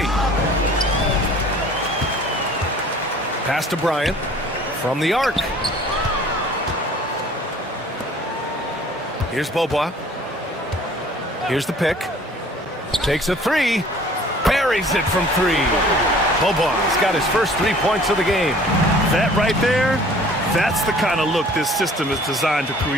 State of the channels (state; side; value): normal; both; correlation 0.51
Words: Pass to Bryant from the arc. Here's Beaubois. Here's the pick. Takes a three. Buries it from 3. Beaubois got his first 3 points of the game. That right there, that's the kind of look this system is designed to